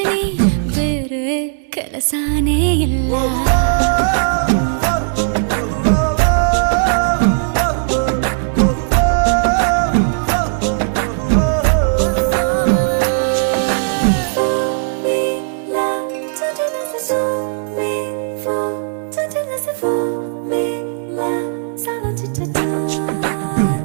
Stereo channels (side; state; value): left; silent; digital silence